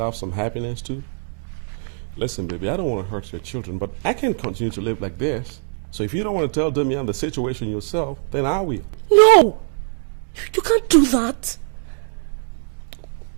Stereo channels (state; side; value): silent; left; digital silence